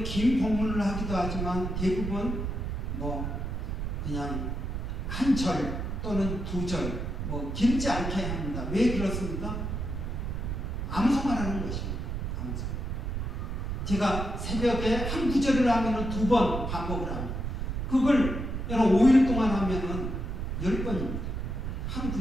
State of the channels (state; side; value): noise; right; rumble, 3 dB below the sound